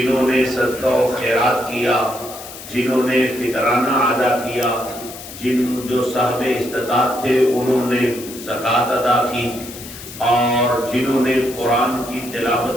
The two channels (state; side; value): noise; left; hiss, 14 dB below the sound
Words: نے صدقہ و خیرات کیا، جنہوں نے فطرانہ ادا کیا، جو صاحب استطاعت تھے انہوں نے زکوٰۃ ادا کی، اور جنہوں نے قرآن کی